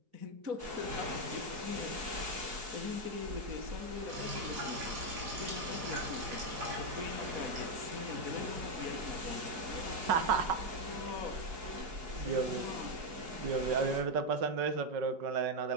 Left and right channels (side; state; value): left; late; 4.7 ms